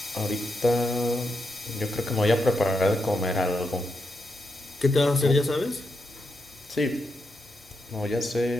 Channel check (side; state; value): both; normal; correlation 0.84